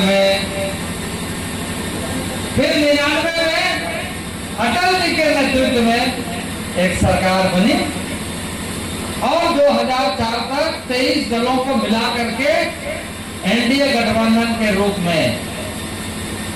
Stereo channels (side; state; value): both; identical; correlation 1.00